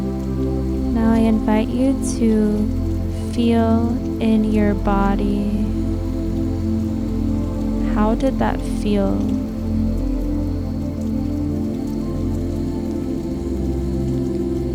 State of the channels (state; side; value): identical; both; correlation 1.00